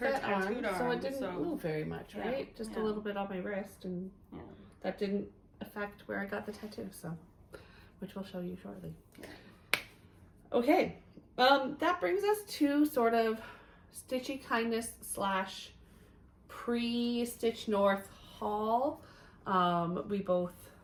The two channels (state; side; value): identical; both; correlation 1.00